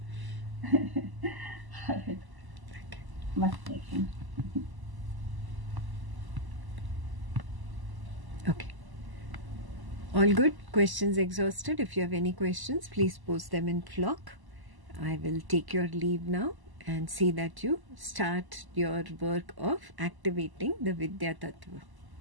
All right. Much taken. Okay. All good? Questions exhausted? If you have any questions, please post them in Flock. I will take your leave now and see that you start your work of activating the Vidya Tattva.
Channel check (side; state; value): left; late; 1.0 ms